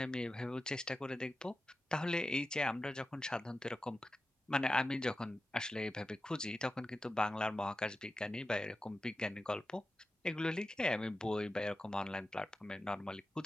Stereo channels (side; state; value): both; normal; correlation 0.92